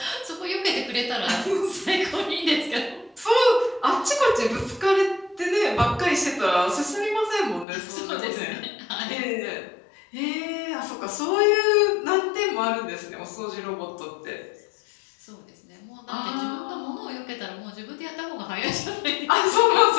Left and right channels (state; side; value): drops out; right; at 7.7 s